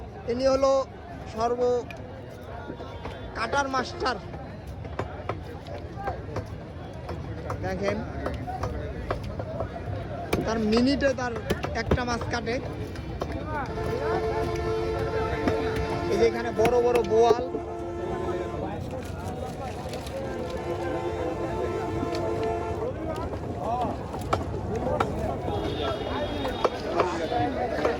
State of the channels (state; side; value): identical; both; correlation 1.00